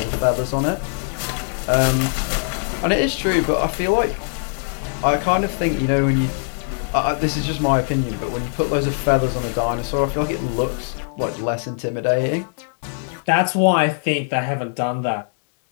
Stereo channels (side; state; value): right; silent; 64 dB below the other